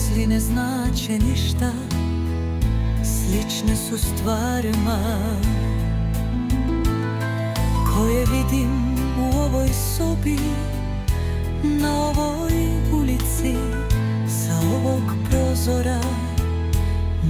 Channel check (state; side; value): identical; both; correlation 1.00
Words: ne znače ništa, slične su stvarima koje vidim u ovoj sobi, na ovoj ulici, sa ovog prozora,